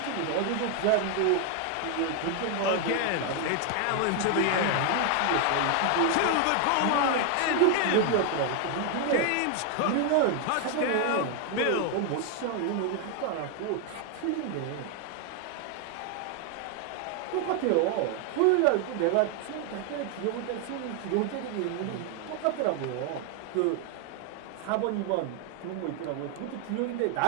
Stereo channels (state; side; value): different; both; correlation 0.01